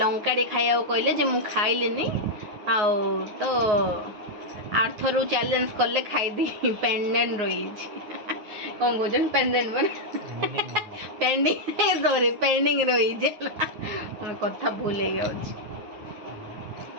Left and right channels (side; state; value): left; late; 9.5 ms